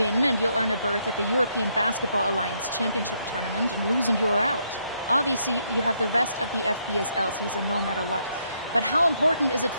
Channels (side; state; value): both; inverted; correlation -0.75